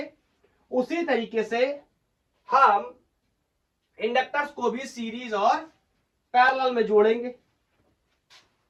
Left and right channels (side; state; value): both; identical; correlation 1.00